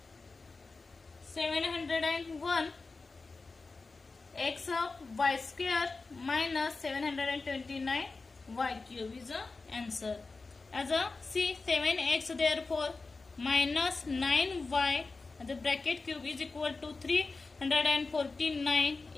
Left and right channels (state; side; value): quieter; right; 3.9 dB